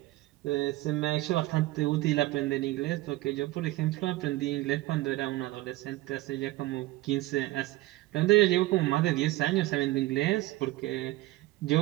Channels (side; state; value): left; quieter; 18.5 dB